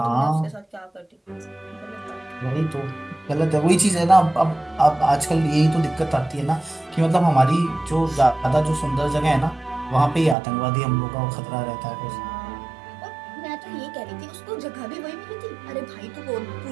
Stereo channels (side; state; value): left; drops out; at 10.4 s